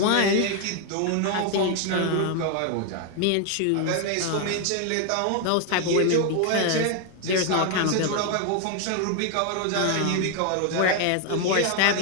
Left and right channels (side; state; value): both; different; correlation 0.00